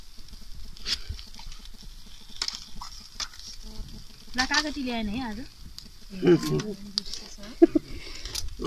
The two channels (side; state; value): both; identical; correlation 1.00